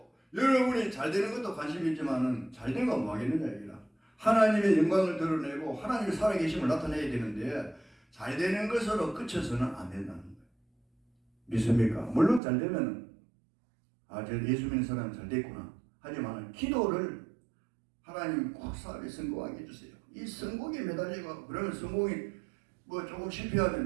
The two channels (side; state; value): left; drops out; at 12.4 s